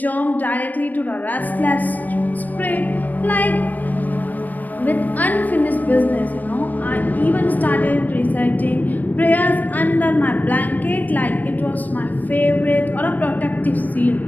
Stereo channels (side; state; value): right; late; 0.084 ms